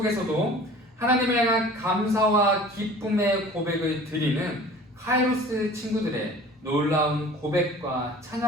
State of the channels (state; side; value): normal; both; correlation 0.44